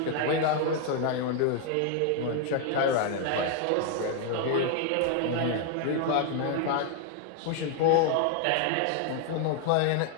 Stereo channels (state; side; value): different; both; correlation 0.00